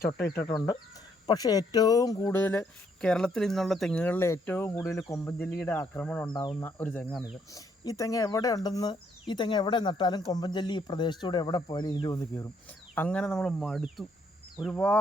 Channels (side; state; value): both; normal; correlation 0.70